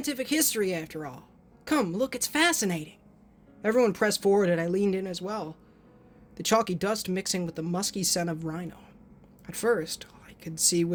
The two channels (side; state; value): both; identical; correlation 1.00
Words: history, after all. Come, look, it's fascinating. Everyone pressed forward, and I leaned in as well, the chalky dust mixing with the musky scent of rhino. At first, all I could see